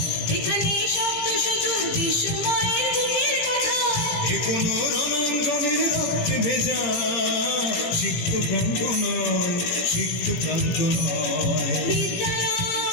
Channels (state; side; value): late; right; 17 ms